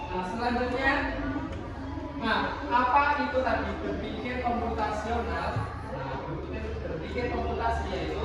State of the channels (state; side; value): identical; both; correlation 1.00